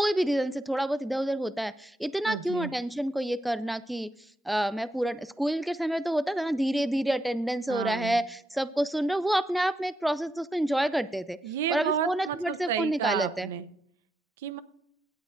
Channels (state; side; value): normal; both; correlation 0.83